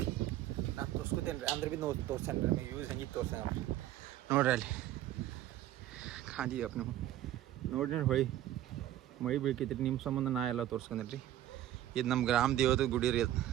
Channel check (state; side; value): quieter; left; 13.2 dB